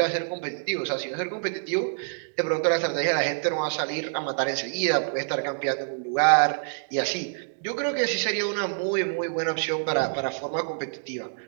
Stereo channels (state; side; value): silent; left; digital silence